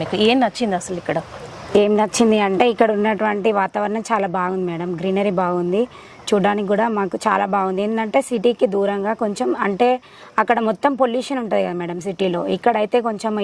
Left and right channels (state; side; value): identical; both; correlation 1.00